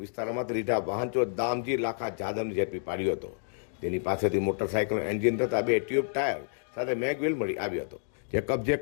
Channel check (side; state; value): right; silent; digital silence